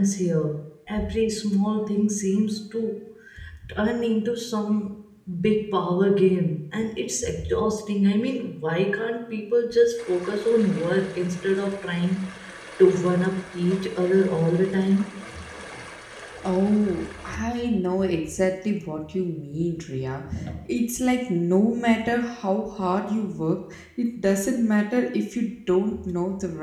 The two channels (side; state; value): both; identical; correlation 1.00